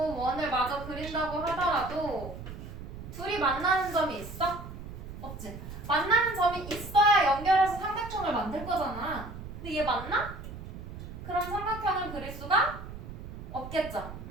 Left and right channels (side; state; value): right; noise; rumble, 11 dB below the sound